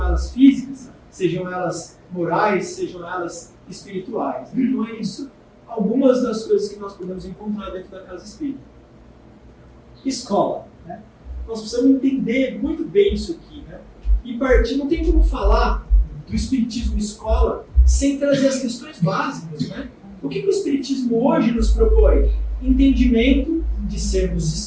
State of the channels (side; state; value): both; identical; correlation 1.00